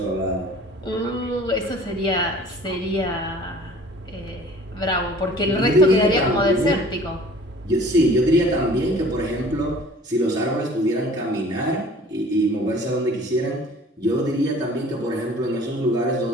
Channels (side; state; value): both; normal; correlation 0.48